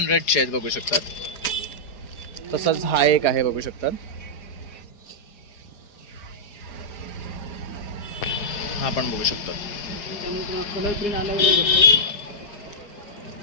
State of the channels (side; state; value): right; late; 4.9 ms